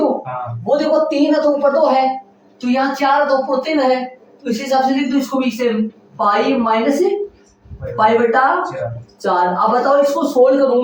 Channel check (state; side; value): identical; both; correlation 1.00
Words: वो देखो 3 है तो ऊपर 2 है तो यहाँ 4 है तो ऊपर 3 है तो इसी हिसाब से लिख दो इसको भी सेम पाई माइनस पाई बटा 4 अब बताओ इसको सोल्व करूं